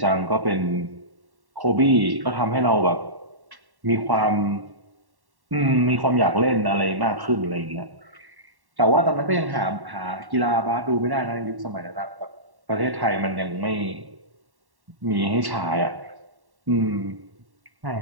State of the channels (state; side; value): late; left; 1.1 ms